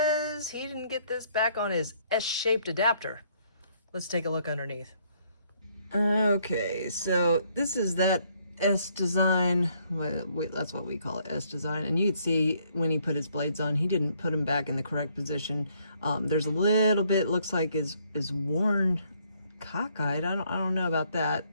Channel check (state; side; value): inverted; both; correlation -0.67